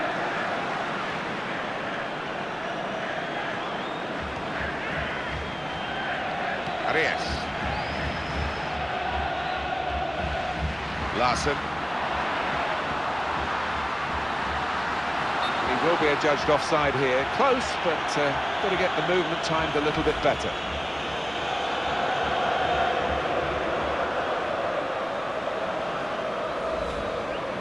Arias. Larson. He will be adjudged offside here. Close, but got to get the movement timed a little bit better.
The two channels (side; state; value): right; noise; rumble, 22 dB below the sound